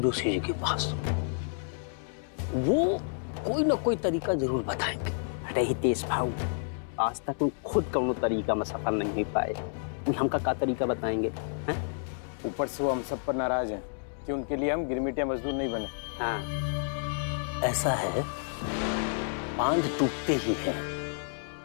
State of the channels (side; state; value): right; silent; 58 dB below the other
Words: जोशी जी के पास, वो कोई ना कोई तरीका जरूर बताएंगे। अरे हितेश भाऊ, आज तक वो खुद कौनो तरीका में सफल नहीं हो पाए, वो हमका का तरीका बताएंगे? ऊपर से वो हम सब पर नाराज हैं कि उनके लिए हम गिरमिटिया मजदूर नहीं बने। हाँ ऐसा है, बांध टूटते ही है,